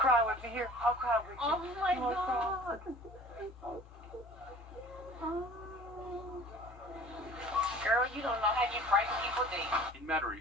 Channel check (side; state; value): both; normal; correlation 0.46